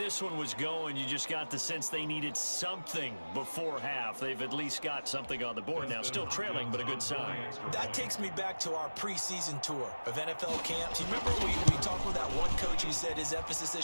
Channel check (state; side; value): inverted; both; correlation -1.00